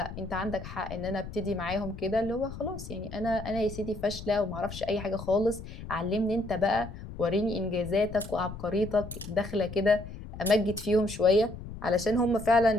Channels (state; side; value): noise; left; rumble, 11 dB below the sound